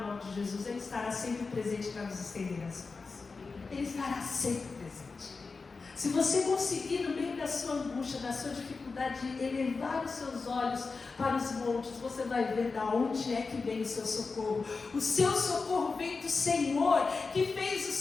nome de Jesus, Ele estará sempre presente para nos estender as mãos. Ele estará sempre presente. Se você conseguir, no meio da sua angústia, da sua dificuldade, elevar os seus olhos para os montes, você vai ver de onde é que vem o seu socorro. O seu socorro vem do Senhor, que fez o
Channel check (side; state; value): right; quieter; 4.3 dB